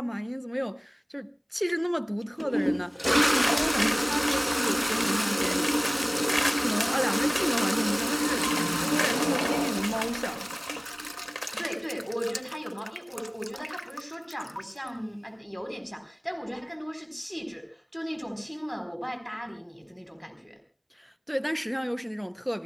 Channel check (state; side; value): identical; both; correlation 1.00